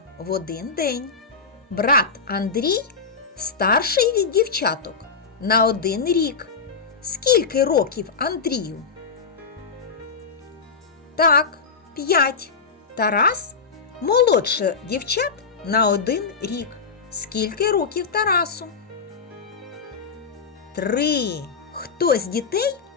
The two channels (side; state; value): right; quieter; 5.3 dB